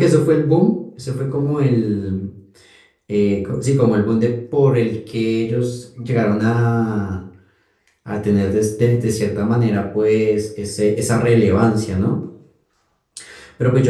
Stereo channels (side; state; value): both; identical; correlation 1.00